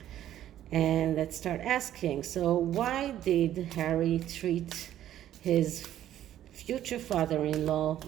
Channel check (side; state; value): left; quieter; 11.9 dB